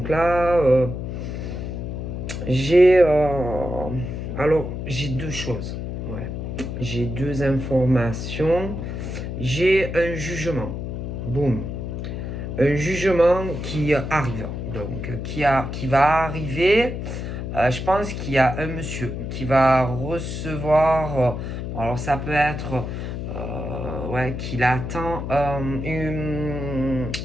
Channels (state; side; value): noise; left; hum, 5 dB below the sound